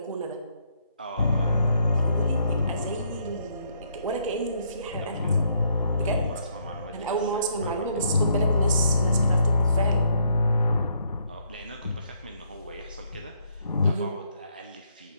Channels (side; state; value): both; inverted; correlation -0.71